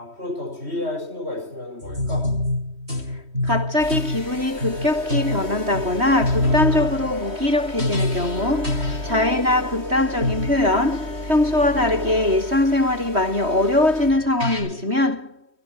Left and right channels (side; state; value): left; late; 3.1 ms